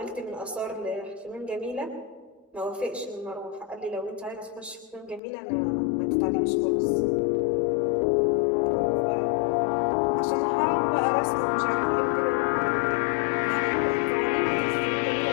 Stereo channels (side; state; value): right; drops out; at 5.2 s